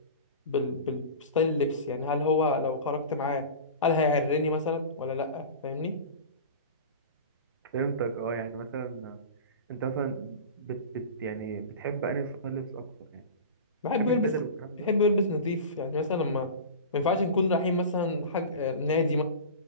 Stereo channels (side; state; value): both; inverted; correlation -0.32